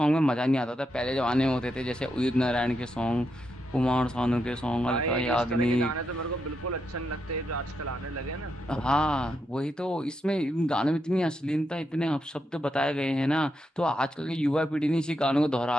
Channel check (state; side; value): normal; both; correlation 0.83